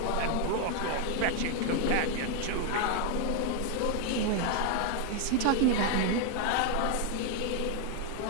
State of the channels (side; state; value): both; different; correlation 0.01